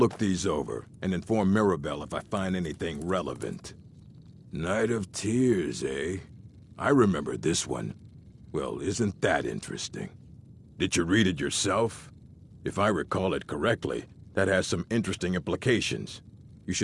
these over and inform Mirabelle if I find anything relevant. Night of Tears, eh? I remember this one. Well, isn't that interesting? Did you read it yourself? If I recall it correctly, that has some interesting implications. You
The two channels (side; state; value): both; identical; correlation 1.00